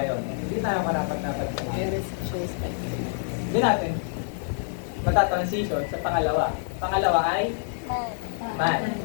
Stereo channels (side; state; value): right; silent; digital silence